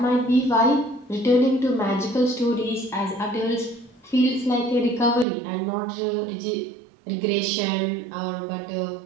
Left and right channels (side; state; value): left; drops out; at 5.2 s